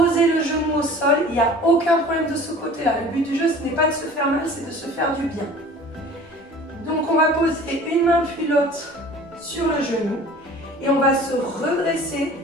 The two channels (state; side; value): normal; both; correlation 0.45